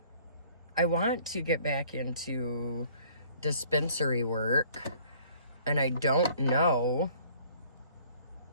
I want to get back into dispensary work, and I don't know.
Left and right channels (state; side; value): inverted; both; correlation -0.55